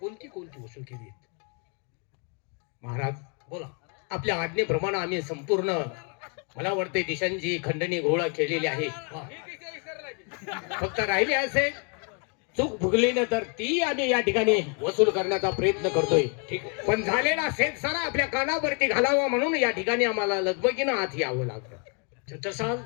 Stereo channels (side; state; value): right; quieter; 37.9 dB